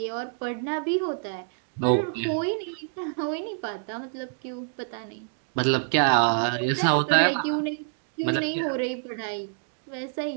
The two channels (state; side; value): silent; left; digital silence